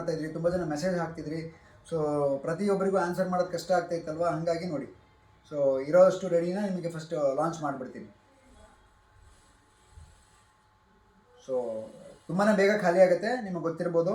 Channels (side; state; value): both; identical; correlation 1.00